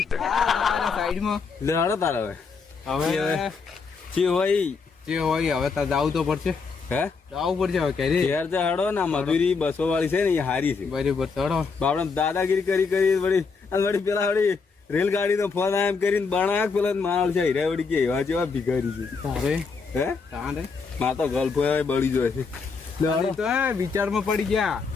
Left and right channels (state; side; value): quieter; right; 4.9 dB